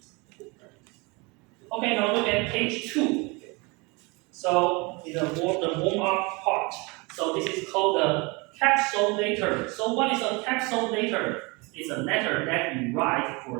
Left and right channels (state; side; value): quieter; left; 27.5 dB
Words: Okay, now look at page 2. So in the warm-up part. So this is called the capsule letter. So what is a capsule letter? It's a letter that you write for